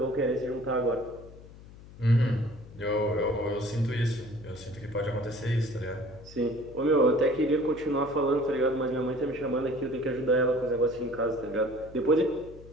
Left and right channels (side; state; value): left; noise; hum, 19 dB below the sound